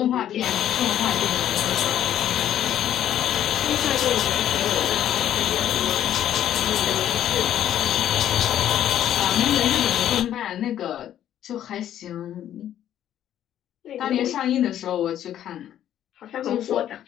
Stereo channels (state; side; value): quieter; right; 11.1 dB